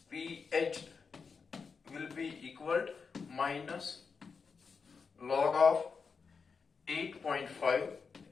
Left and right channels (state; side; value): quieter; right; 5.3 dB